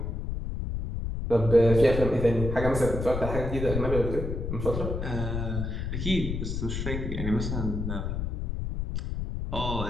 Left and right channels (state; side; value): noise; left; rumble, 3 dB below the sound